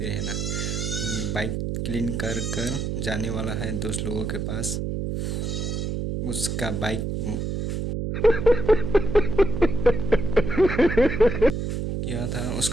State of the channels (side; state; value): right; noise; hum, 2 dB below the sound